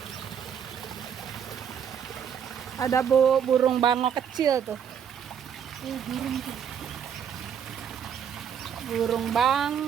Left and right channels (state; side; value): quieter; left; 8.1 dB